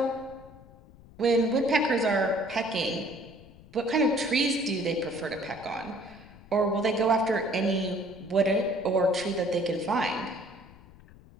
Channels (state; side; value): noise; left; rumble, 22 dB below the sound